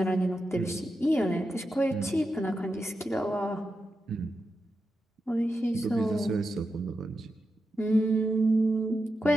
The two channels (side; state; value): both; normal; correlation 0.89